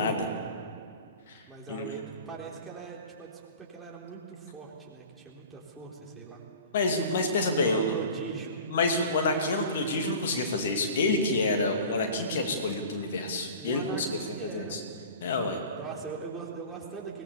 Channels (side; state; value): both; inverted; correlation -0.40